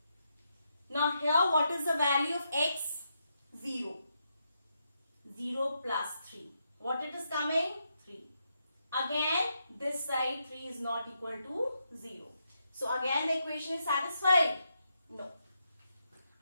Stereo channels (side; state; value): both; inverted; correlation -0.82